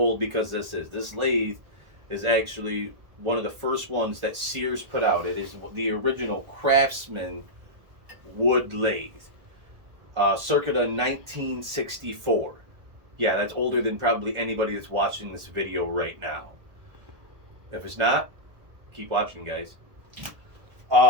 because this lathe is actually one of the first ones that Sears put out. It is the original Craftsman wood lathe, circa 1964. Yeah, that's older than probably anybody that's watching this video right now. If it's not, keep watching, guys.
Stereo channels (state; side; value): late; left; 1.3 ms